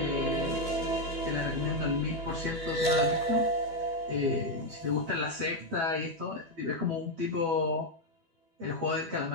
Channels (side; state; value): left; late; 12 ms